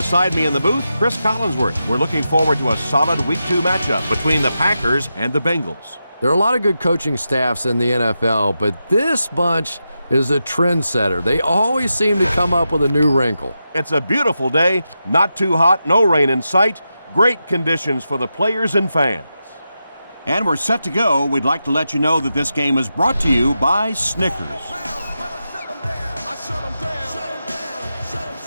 me in the booth, Chris Collinsworth. We're looking forward to a solid Week 2 matchup between the Packers and the Bengals. There are a lot of good coaching staffs in the NFL, but this bunch is a trendsetter. They always seem to come up with a new wrinkle. It's a beautiful day, not too hot, no rain in sight. Great conditions for the players and fans. And we're set to go. We'd like to let you know that this game is brought to you by Snickers.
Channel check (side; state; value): both; inverted; correlation -0.89